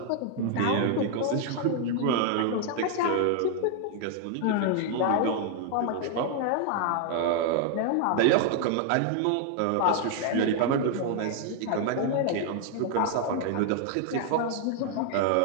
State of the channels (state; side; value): different; both; correlation 0.00